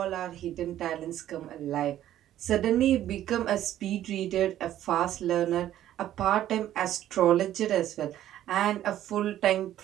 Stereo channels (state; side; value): quieter; left; 12.4 dB